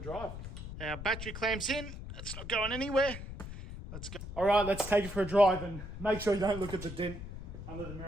Our battery clamp's in. It's not going anywhere. Let's go. Alright, let's take it for a drive and make sure you don't look at the dent under the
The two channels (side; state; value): left; noise; rumble, 9 dB below the sound